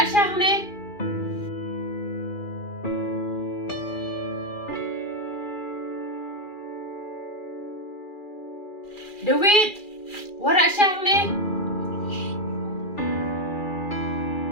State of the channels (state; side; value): late; right; 2.4 ms